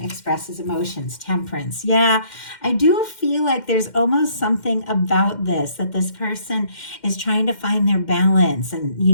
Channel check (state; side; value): late; right; 2.1 ms